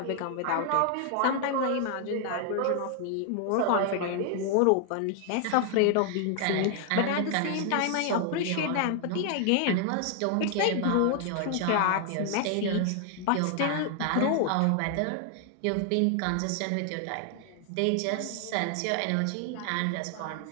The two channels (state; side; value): different; both; correlation 0.00